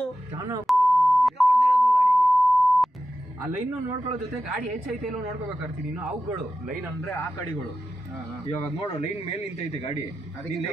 ಆ ಲೈನ್ ನೋಡ್ಕೊಳ್ಳೋ ಜೊತೆ ಗಾಡಿ ಹೆಚ್ಚೈತೆ ಇಲ್ಲೋ ನೋಡ್ಕೋಬೇಕಾಗ್ತೀನಿ ನೀನು ಅವುಗಳು ಲೈನ್ ಅಂದ್ರೆ ಆ ಕಡೆಗಳು ಇವಾಗ ನೋಡು ಲೈನ್ ಮೇಲೆ ನಿಂತೈತೆ ಗಾಡಿ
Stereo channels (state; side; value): normal; both; correlation 0.92